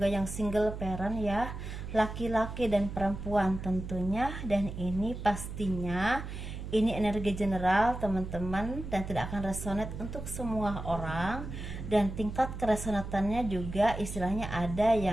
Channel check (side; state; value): right; noise; hum, 8 dB below the sound